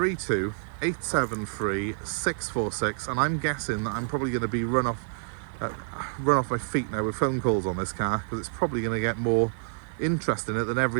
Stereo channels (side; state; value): left; silent; digital silence